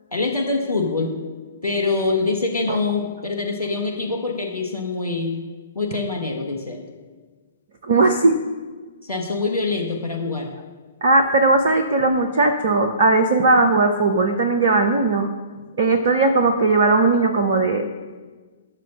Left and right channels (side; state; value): both; inverted; correlation -0.48